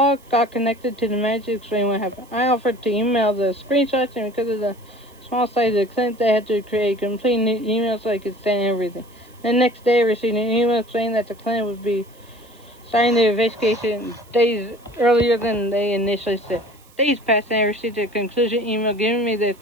got connected to the manager, explained what happened. I offered to email the screenshots, and because of the small size of the clinic, they had to create a complete new email so I could send everything. The next day, I received an email saying that the clinic would be starting the investigation days earlier than they initially said. Days passed, and I received a conclusion email giving me their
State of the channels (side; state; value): right; noise; hiss, 28 dB below the sound